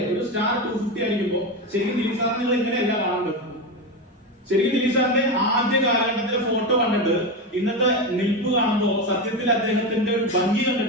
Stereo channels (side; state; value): both; normal; correlation 0.16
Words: ഒരു സ്റ്റാർ 250 ആയിരിക്കുമ്പോ ശരിക്കും ദിലീപ് സാറിന് നിങ്ങൾ എങ്ങനെയല്ല കാണേണ്ടത്? ശരിക്കും ദിലീപ് സാറിന്റെ ആദ്യ കാലഘട്ടത്തിലെ ഫോട്ടോ കണ്ടിട്ട് ഇന്നത്തെ നിൽപ്പ് കാണുമ്പോ സത്യത്തിൽ അദ്ദേഹത്തിന്റെ ഒരു ഭംഗി